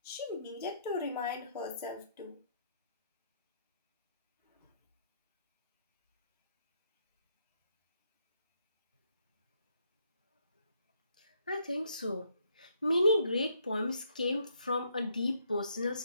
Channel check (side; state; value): both; inverted; correlation -0.73